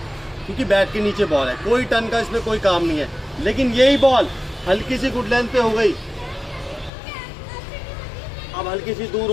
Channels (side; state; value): right; drops out; at 6.9 s